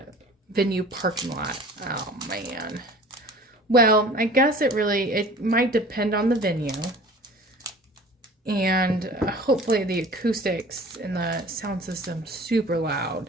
venue parking lot? Oh man. Well, I guess it might depend on the venue. And hopefully the acoustics and the sound system super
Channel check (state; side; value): normal; both; correlation 0.45